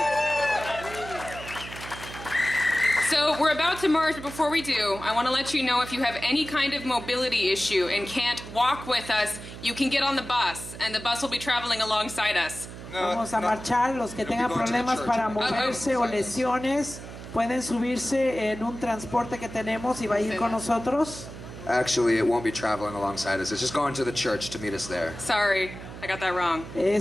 So we're about to march, but before we do, I want to let you know if you have any kind of mobility issue and can't walk with us, you can get on the bus, and the bus will be traveling alongside us. Vamos a marchar, los que tengan problemas para moverse o lesiones, pueden subirse en un transporte que tenemos y va a ir con nosotros. Actually, it won't be traveling alongside us. It's just going to the church to meet us there. Sorry, I got that wrong.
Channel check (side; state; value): right; noise; hum, 12 dB below the sound